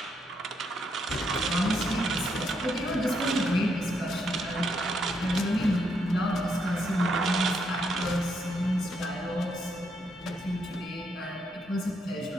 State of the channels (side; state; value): both; normal; correlation 0.77